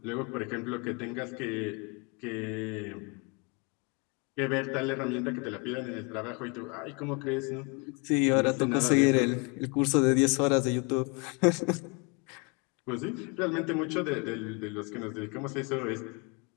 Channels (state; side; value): quieter; right; 32.1 dB